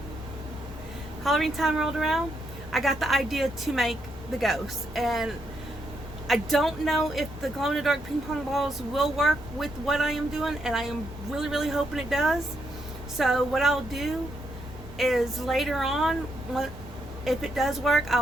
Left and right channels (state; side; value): normal; both; correlation 0.78